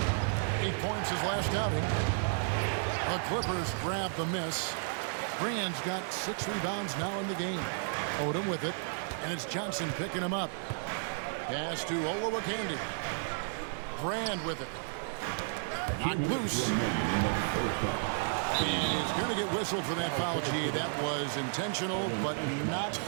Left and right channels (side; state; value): left; silent; 56 dB below the other